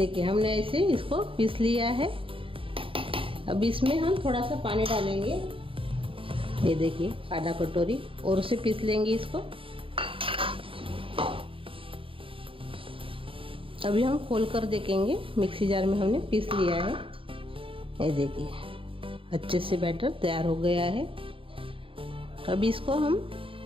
हमने ऐसे इसको पीस लिया है। अब इसमें हम थोड़ा सा पानी डालेंगे। ये देखिए आधा कटोरी और उसे पीस लेंगे इसको। अभी हम खोल कर देखेंगे। मिक्सी जार में हमने पीस लिया है। ये देखिए अच्छे से बैटर तैयार हो गया है। अब इसको हम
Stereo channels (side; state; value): left; late; 0.26 ms